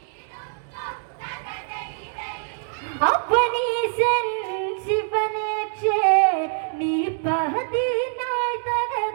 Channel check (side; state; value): left; silent; digital silence